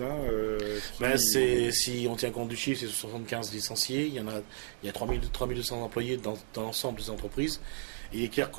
si on tient compte du chiffre, c'est 75 licenciés, il y a 3200 employés dans l'ensemble des entreprises, et il est clair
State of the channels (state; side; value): silent; left; digital silence